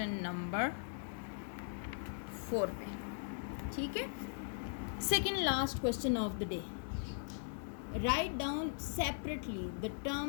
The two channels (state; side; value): silent; right; digital silence